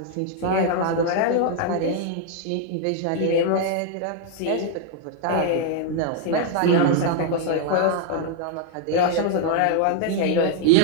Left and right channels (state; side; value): different; both; correlation 0.00